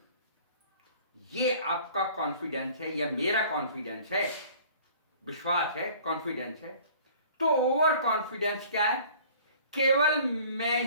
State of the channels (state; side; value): inverted; both; correlation -0.49